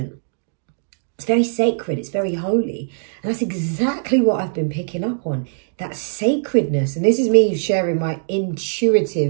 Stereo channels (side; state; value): left; silent; digital silence